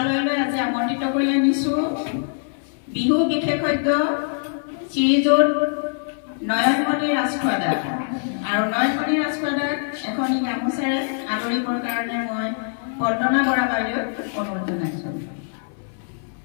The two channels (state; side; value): silent; right; 62 dB below the other